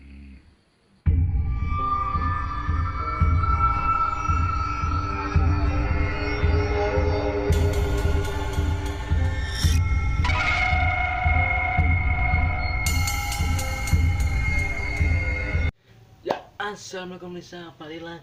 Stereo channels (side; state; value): both; identical; correlation 1.00